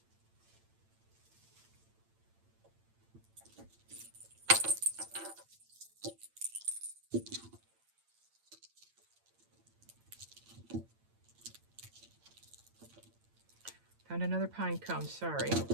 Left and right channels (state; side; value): late; left; 8.8 ms